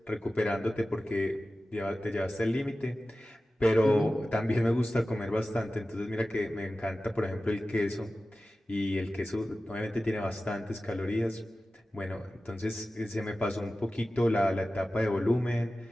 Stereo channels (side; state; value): both; normal; correlation 0.95